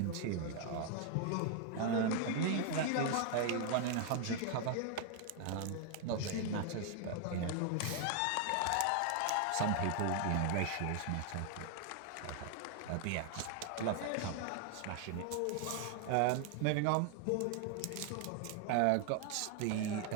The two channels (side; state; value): both; different; correlation 0.00